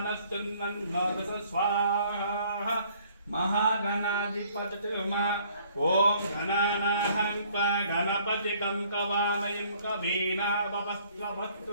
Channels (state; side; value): inverted; both; correlation -0.60